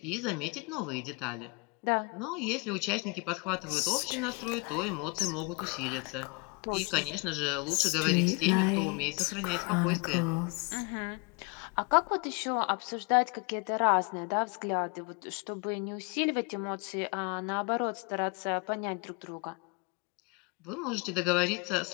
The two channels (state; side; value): quieter; right; 29.6 dB